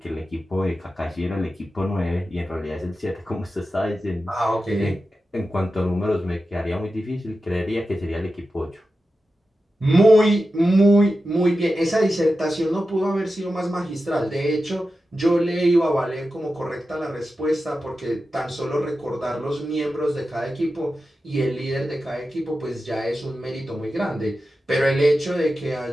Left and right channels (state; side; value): normal; both; correlation 0.92